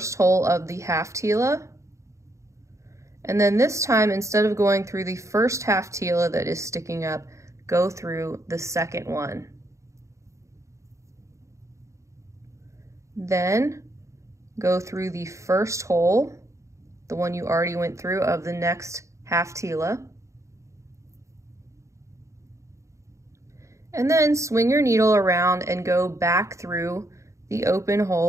hole of the half Tila. And then this time, instead of going through the first half Tila that is sticking up, go through the second one. Then go through the first hole, the one you already went through, of the next half Tila. And then swing your needle around and go back through the open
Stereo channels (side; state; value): left; late; 0.14 ms